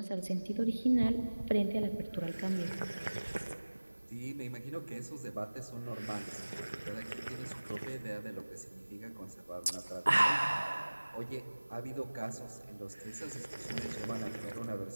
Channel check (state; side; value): inverted; both; correlation -1.00